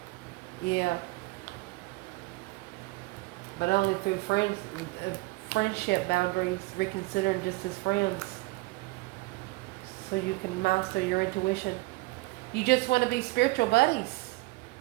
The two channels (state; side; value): quieter; left; 22.2 dB